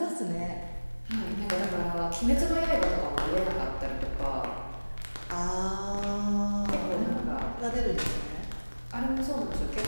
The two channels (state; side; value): inverted; both; correlation -1.00